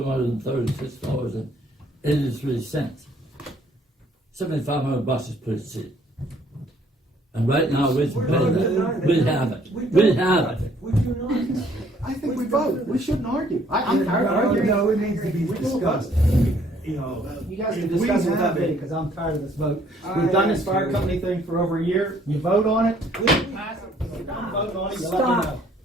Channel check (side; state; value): both; normal; correlation 0.62